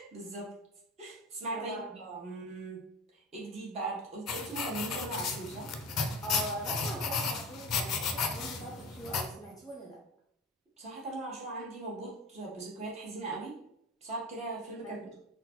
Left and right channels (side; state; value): both; normal; correlation 0.32